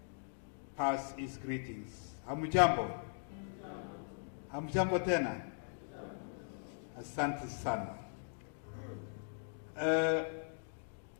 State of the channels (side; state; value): right; silent; digital silence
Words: pass his greetings. Hamujambo. Hamjambo tena. Asante sana.